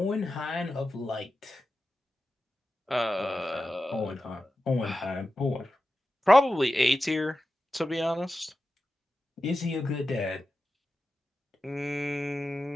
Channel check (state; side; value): normal; both; correlation 0.92